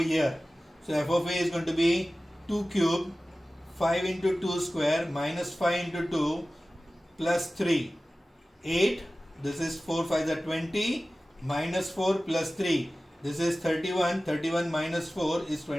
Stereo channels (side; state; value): both; normal; correlation 0.96